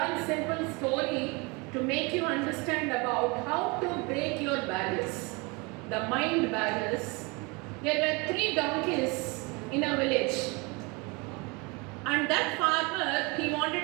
simple story to make you understand about how to break your barriers, the mind barriers. There were 3 donkeys in a village, and that farmer, he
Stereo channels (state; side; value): quieter; left; 27.8 dB